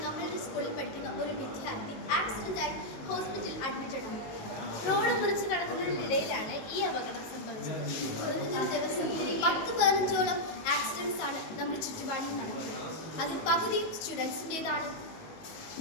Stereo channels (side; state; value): right; late; 19 ms